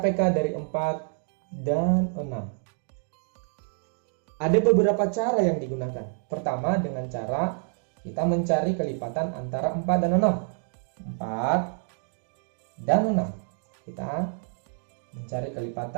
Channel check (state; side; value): silent; left; 60 dB below the other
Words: dari 4 dan 6. Ada beberapa cara yang digunakan. Pertama, dengan cara kita mencari kelipatan antara 4 dan 6. 4 dan 6. Kita mencari